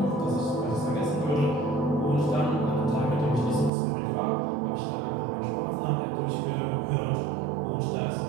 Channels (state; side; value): drops out; left; at 3.7 s